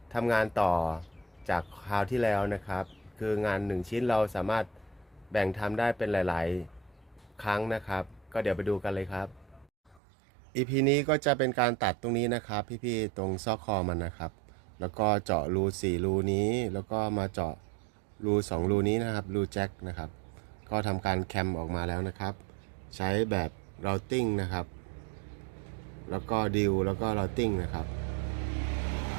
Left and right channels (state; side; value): drops out; left; at 10.0 s